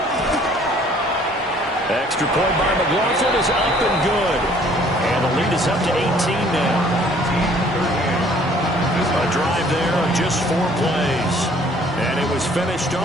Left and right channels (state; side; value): normal; both; correlation 0.58